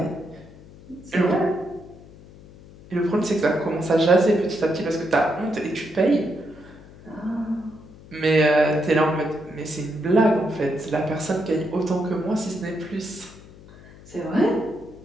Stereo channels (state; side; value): noise; left; hum, 21 dB below the sound